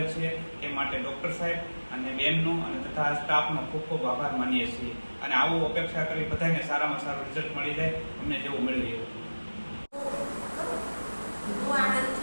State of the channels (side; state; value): both; inverted; correlation -1.00